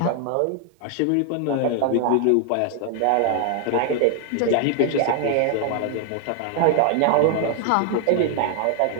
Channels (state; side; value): different; both; correlation 0.00